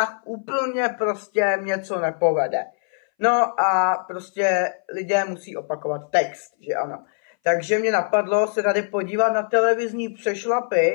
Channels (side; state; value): right; silent; 61 dB below the other